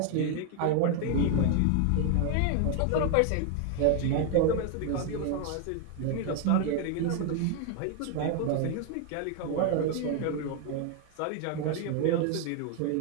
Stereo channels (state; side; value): different; both; correlation 0.01